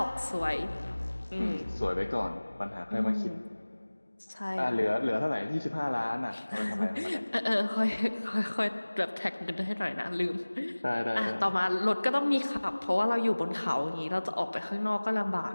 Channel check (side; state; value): both; inverted; correlation -1.00